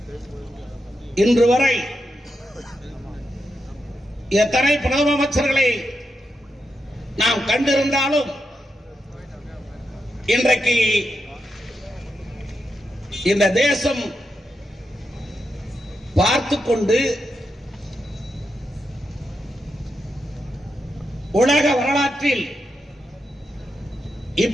இன்று வரை எத்தனை பிரதம அமைச்சர்களை நாம் கண்டிருந்தாலும் இன்றைக்கு இந்த தேசம் பார்த்துக் கொண்டு உலக வரலாற்றில்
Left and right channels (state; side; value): normal; both; correlation 0.86